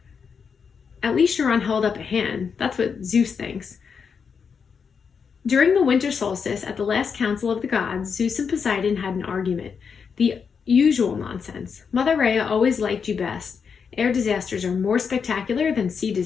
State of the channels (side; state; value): right; quieter; 6.2 dB